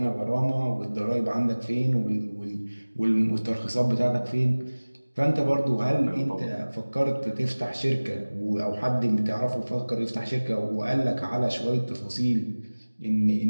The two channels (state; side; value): inverted; both; correlation -1.00